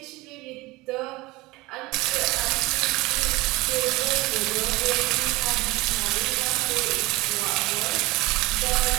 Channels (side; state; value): left; quieter; 21.4 dB